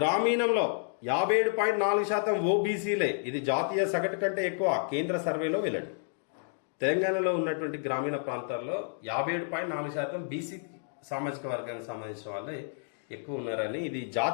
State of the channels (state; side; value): silent; right; digital silence